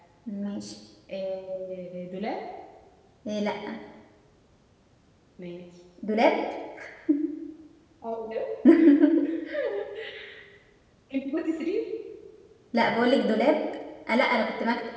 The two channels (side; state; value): both; identical; correlation 1.00